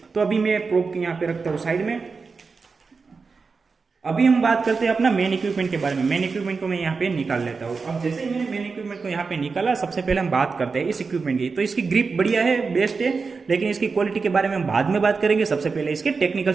तो अभी मैं प्रोब के यहाँ पे रखता हूँ साइड में। अभी हम बात करते हैं अपना मेन इक्विपमेंट के बारे में। मेन इक्विपमेंट को मैं यहाँ पे निकाल लेता हूँ। अब जैसे ही मैंने मेन इक्विपमेंट को यहाँ पे निकाला, सबसे पहले हम बात करते हैं इस इक्विपमेंट की। तो इसकी ग्रिप बढ़िया है, बेस्ट है, लेकिन इसकी क्वालिटी के बारे में हम बाद में बात करेंगे। सबसे पहले इसके टेक्निकल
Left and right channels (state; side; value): quieter; left; 4.7 dB